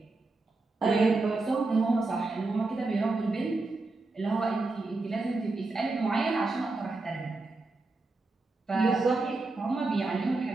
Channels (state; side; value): quieter; left; 3.4 dB